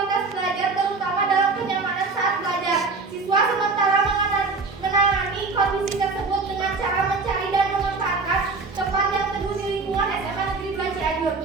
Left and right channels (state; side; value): quieter; left; 4.1 dB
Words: belajar terutama dalam kenyamanan saat belajar. Siswa sementara menangani kondisi tersebut dengan cara mencari dan memanfaatkan tempat yang teduh di lingkungan SMA Negeri 2 Cianjur.